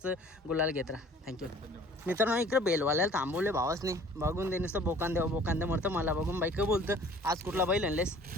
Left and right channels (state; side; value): normal; both; correlation 0.51